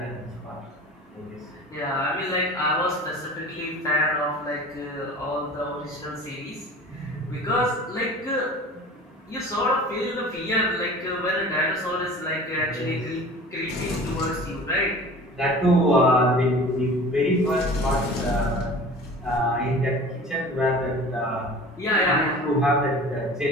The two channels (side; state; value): both; normal; correlation 0.41